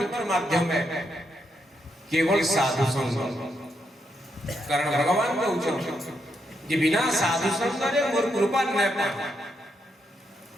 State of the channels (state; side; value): normal; both; correlation 0.80